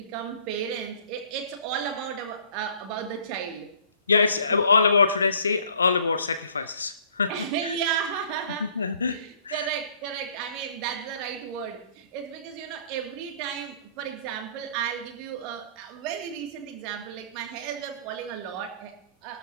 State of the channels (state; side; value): inverted; both; correlation -0.56